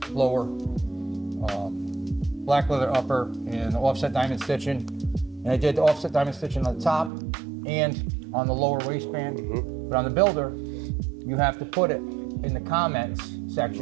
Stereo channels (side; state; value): left; drops out; at 7.1 s